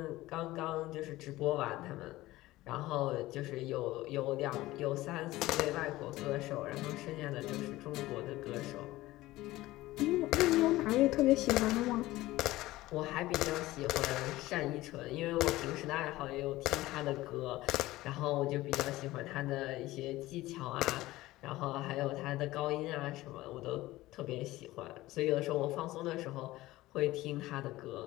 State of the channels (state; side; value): quieter; right; 17.6 dB